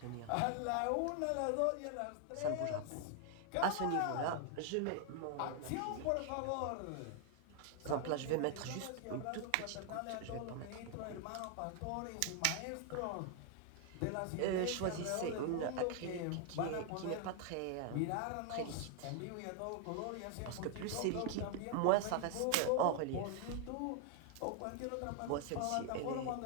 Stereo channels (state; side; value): different; both; correlation 0.00